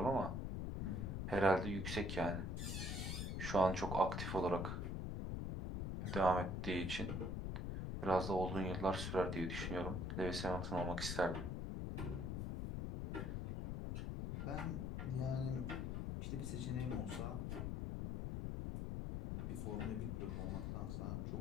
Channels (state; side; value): noise; left; rumble, 2 dB below the sound